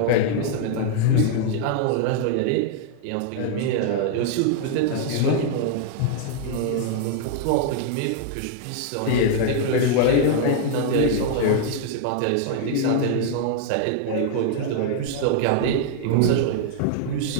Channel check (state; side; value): different; both; correlation -0.01